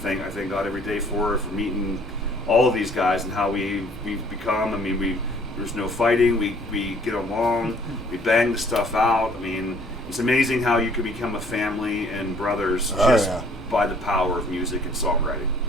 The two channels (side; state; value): both; normal; correlation 0.58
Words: God every day for meeting all of these guys and how we've become. I mean, there's no fighting, we get along, we bang the stuff out. I mean, it's amazing how you can become a family and brothers by the power of music and songwriting.